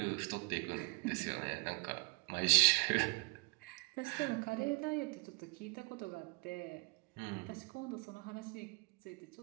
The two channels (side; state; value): left; quieter; 31.3 dB